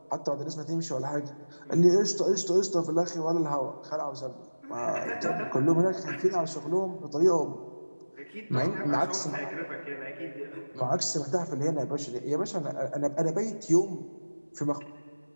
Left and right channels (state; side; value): inverted; both; correlation -1.00